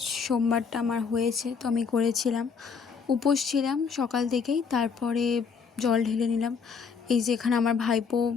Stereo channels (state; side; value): quieter; right; 5.8 dB